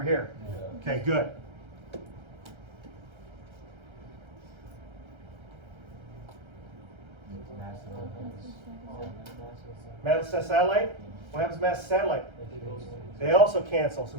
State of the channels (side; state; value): left; late; 1.3 ms